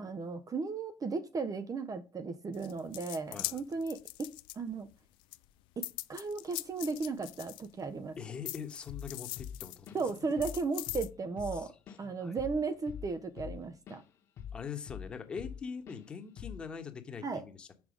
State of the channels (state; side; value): normal; both; correlation 0.60